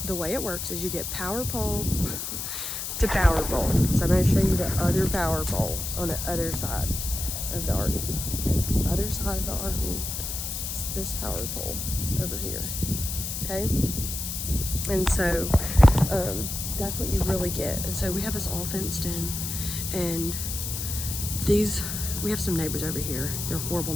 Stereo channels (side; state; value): left; noise; hiss, 4 dB below the sound